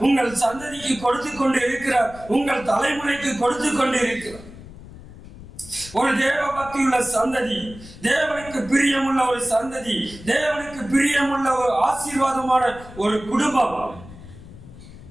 உங்கள் சந்ததிக்கு கொடுத்து கொண்டு இருக்கிறார், உங்கள் தலைமுறைக்கு கொடுத்து கொண்டு இருக்கிறார். ஒரு தேவ பக்தியுள்ள சந்ததி, தேவனுக்கு பிரியமுள்ள ஒரு சந்ததி, தேவனுக்கு பிரியமுள்ள ஒரு ஆசீர்வாதமான ஒரு குடும்பம்,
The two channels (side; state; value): left; noise; rumble, 17 dB below the sound